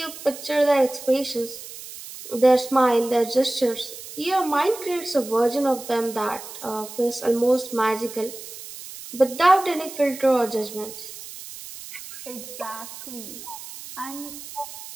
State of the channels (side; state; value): right; noise; hiss, 13 dB below the sound